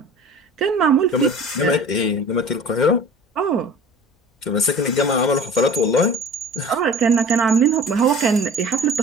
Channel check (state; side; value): normal; both; correlation 0.43